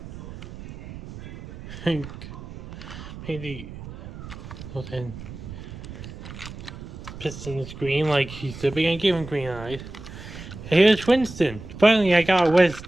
Maybe then Piston's green like he's the big. I gave him green eyes. Here's Winston. Finally, I got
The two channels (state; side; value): noise; right; rumble, 13 dB below the sound